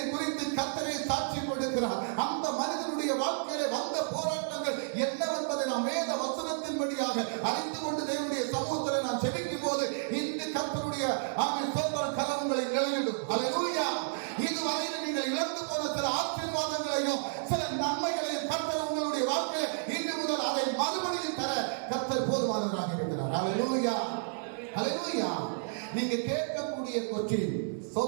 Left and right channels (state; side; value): silent; left; 57 dB below the other